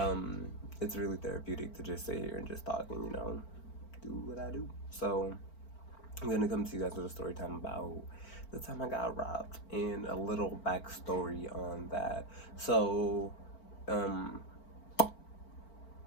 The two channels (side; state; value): right; late; 4.4 ms